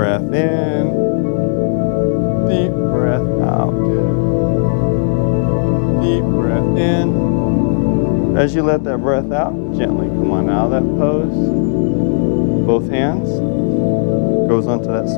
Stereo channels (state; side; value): silent; right; digital silence